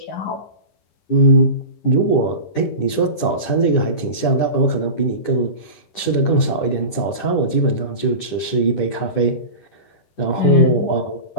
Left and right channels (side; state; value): right; late; 10 ms